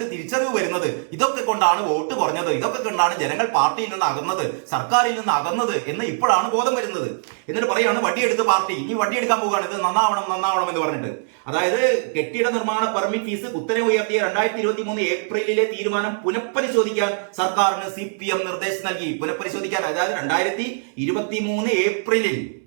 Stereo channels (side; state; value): left; silent; digital silence